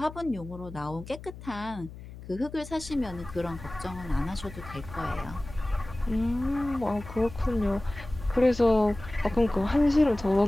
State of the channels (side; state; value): left; noise; hum, 14 dB below the sound